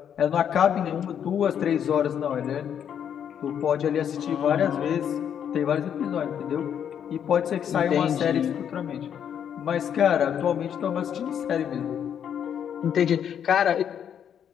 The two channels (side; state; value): right; quieter; 8.8 dB